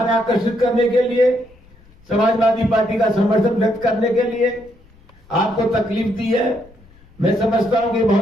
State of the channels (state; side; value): noise; left; rumble, 27 dB below the sound